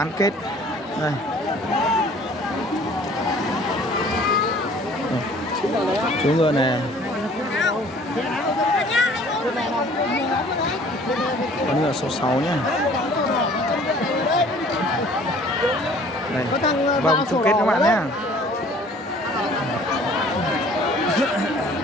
kết. Đây. Chú ngựa này, con ngựa số 6 nhé. Đây, vòng chung kết các bạn nhé.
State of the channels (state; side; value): normal; both; correlation 0.53